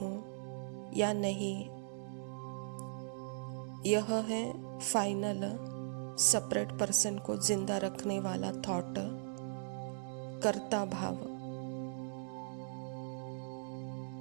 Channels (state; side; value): silent; left; 52 dB below the other